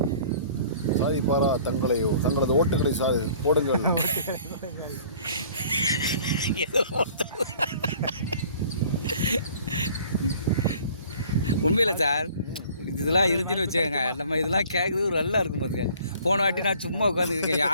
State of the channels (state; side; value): inverted; both; correlation -0.52